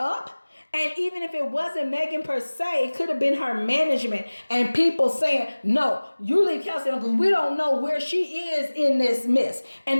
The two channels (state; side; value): inverted; both; correlation -1.00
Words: And even if it wasn't Megan per se, it could have been her management and people saying, no, you leave Kelsey alone because we don't know where she is in this mess.